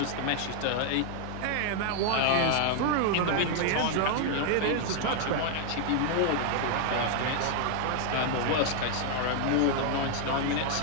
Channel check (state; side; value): different; both; correlation 0.00